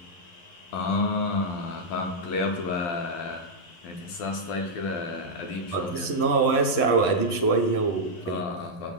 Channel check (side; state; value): right; late; 11 ms